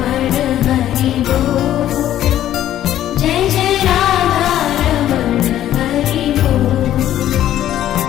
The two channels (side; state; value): right; quieter; 12.2 dB